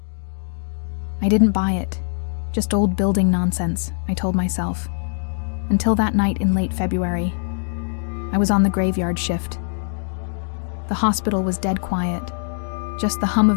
I didn't buy it. Just old building nonsense, I told myself. Until that night in late February. I was on the graveyard shift. The hospital was dead quiet. Just the hum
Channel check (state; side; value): silent; right; digital silence